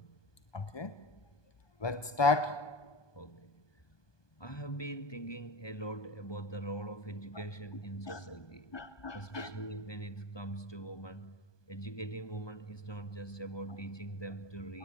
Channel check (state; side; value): late; right; 1.2 ms